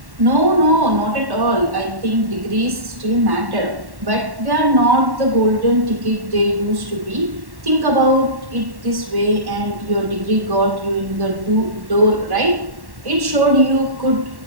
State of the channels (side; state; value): left; late; 1.1 ms